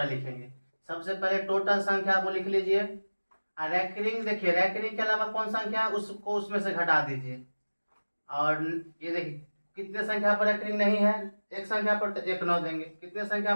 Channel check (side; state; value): both; inverted; correlation -1.00